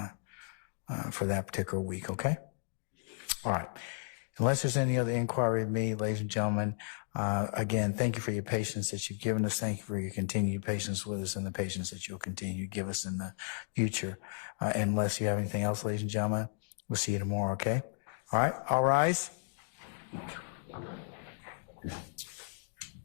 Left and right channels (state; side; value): silent; right; digital silence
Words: for that particular week, okay? All right. Unless there's any other inquiry of me, ladies and gentlemen, again, thank you for your patience that you've given us. Thank you for your continued patience with us and the patience that you'll continue to give us in the future. Unless you have anything else, ladies and gentlemen, we'll see you tomorrow, okay? All right, all rise.